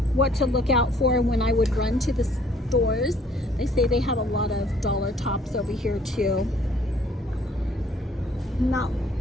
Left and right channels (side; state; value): both; normal; correlation 0.60